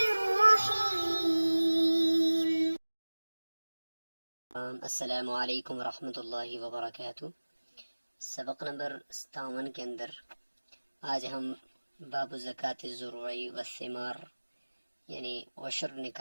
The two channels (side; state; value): both; inverted; correlation -1.00